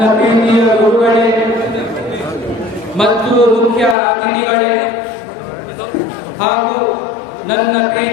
ಪ್ರೀತಿಯ ಗುರುಗಳೇ ಮತ್ತು ಮುಖ್ಯ ಅತಿಥಿಗಳೇ ಹಾಗೂ ನನ್ನ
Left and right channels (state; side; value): drops out; right; at 4.0 s